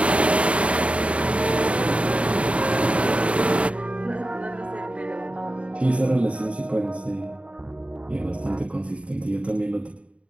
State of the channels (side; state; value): left; late; 0.062 ms